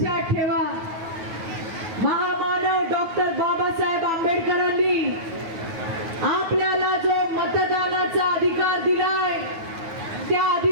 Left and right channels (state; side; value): late; left; 9.5 ms